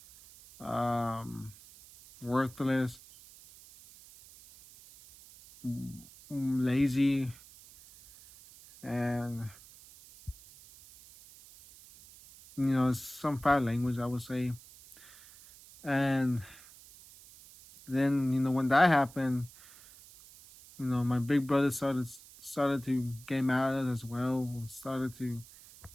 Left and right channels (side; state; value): right; noise; hiss, 21 dB below the sound